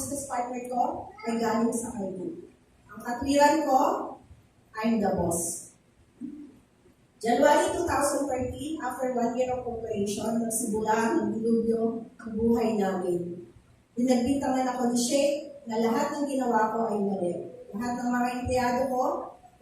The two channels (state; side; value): identical; both; correlation 1.00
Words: partner ko ay galing sa kanya. Ang katwiran ko, I'm the boss. January 2013, after 1 year of operation, nagsimula ng dilubyo ang buhay namin. Pinagbintangan ako ni Sheikh na lahat ng ginawa ko ay mali. Lahat ng mga empleyado ko,